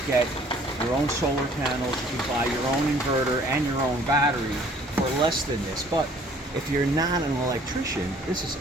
get your own solar panels, you can buy your own inverter and your own battery for less than this. But if you're not an electrician, this is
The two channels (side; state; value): both; normal; correlation 0.56